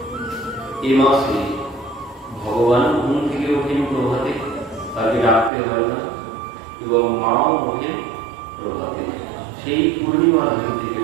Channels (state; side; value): drops out; left; at 5.5 s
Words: এ মাসে ভগবান ঘুম থেকে ওঠেন প্রভাতে, তাকে ডাকতে হয় না, এবং মাও ওঠেন প্রভাতে। সেই পূর্ণিমার দিন থেকে,